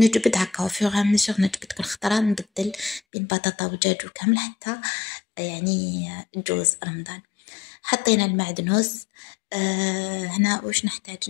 هكا وفيغ ميسور، نجبد كل خطره نبدل بين بطاطا ودجاج وكامل حتى يعني جوز رمضان. حطينا المعدنوس. هنا واش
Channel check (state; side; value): drops out; right; at 3.0 s